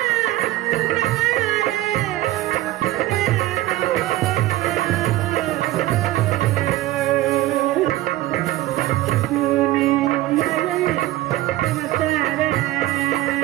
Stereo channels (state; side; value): quieter; left; 16.3 dB